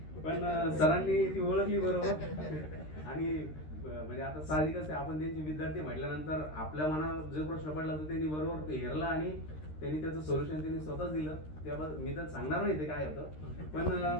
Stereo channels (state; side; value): late; right; 13 ms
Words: पण सरांनी ती ओळखली बरोबर. आणि म्हणजे आता साहजिकच आहे, आपण त्यांचे विद्यार्थी म्हटल्यानंतर आपल्या मनात जो प्रश्न पडला तर त्यांनी बरोबर हेरला आणि त्यांनी त्याचं सोल्युशन त्यांनी स्वतःच दिलं. त्याबद्दल मी तर सांगणार नाही ते काय होतं, पण